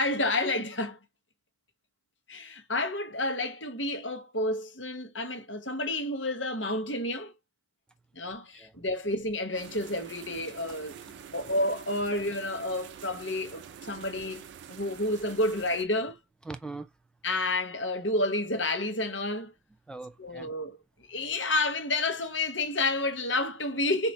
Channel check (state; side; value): normal; both; correlation -0.03